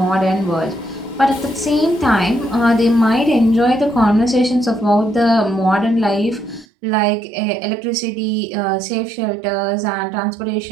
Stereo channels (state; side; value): drops out; left; at 6.7 s